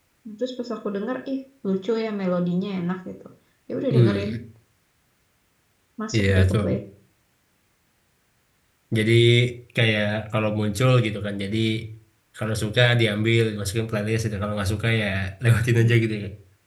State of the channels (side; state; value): both; identical; correlation 1.00